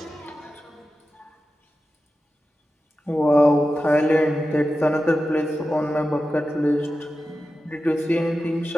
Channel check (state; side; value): normal; both; correlation 0.92